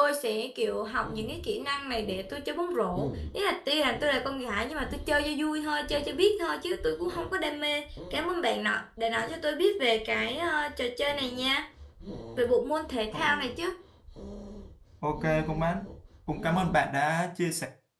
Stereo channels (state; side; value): identical; both; correlation 1.00